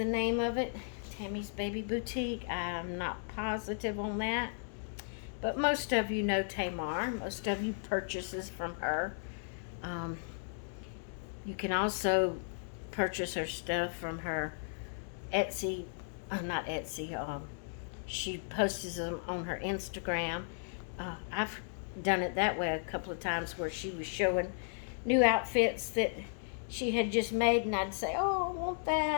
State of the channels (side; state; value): right; silent; digital silence